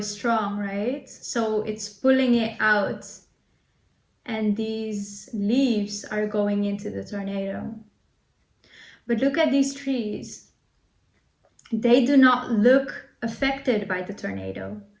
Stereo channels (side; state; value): both; identical; correlation 1.00